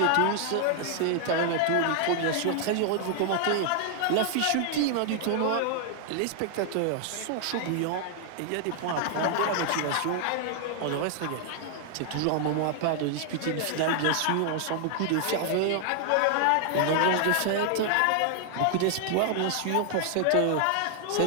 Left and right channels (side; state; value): both; different; correlation 0.00